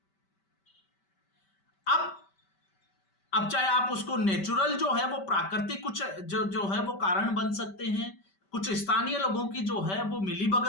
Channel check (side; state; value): right; late; 5.2 ms